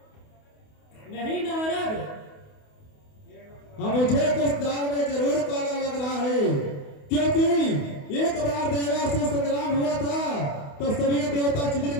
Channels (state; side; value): late; right; 28 ms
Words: नहीं नारद, हाँ, मुझे कुछ दाल में जरूर काला लग रहा है, क्योंकि एक बार देवासुर संग्राम हुआ था तो सभी देवता छिदिर